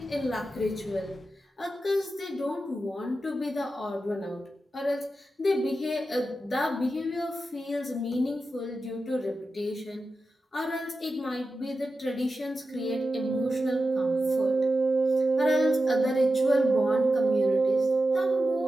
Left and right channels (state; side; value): normal; both; correlation 0.91